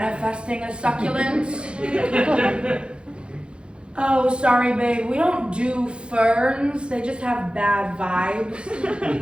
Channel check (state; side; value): late; left; 0.056 ms